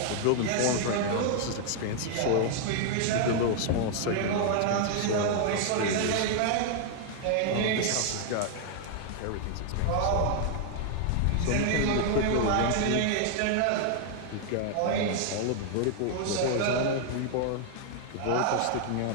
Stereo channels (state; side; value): different; both; correlation 0.00